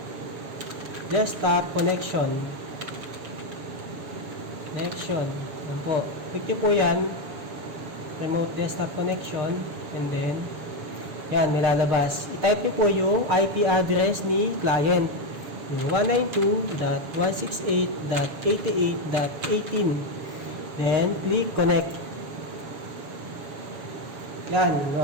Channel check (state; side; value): late; left; 7.0 ms